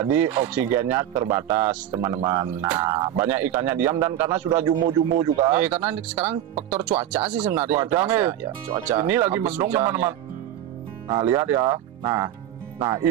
oksigennya terbatas, teman-teman. Nah, banyak ikannya diam dan karena sudah jumbo-jumbo juga. Karena sekarang faktor cuaca sih sebenarnya. Cuaca nih. Ya, cuaca. Ini lagi mendung, teman-teman. Nah, lihat ya. Nah,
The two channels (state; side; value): quieter; left; 11.7 dB